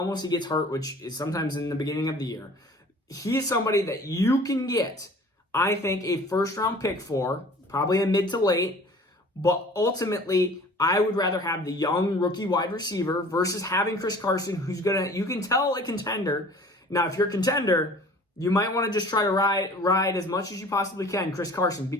he gets hurt, which is sometimes in the beginning of the year. He is somebody that you can get, I think, a first-round pick for, probably a mid to late, but ultimately, I would rather have the young rookie wide receiver versus having Chris Carson, who's you can tell a contender. Now, if you're a contender, you might want to just try to ride as much as you possibly can Chris Carson,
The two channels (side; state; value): both; normal; correlation 0.47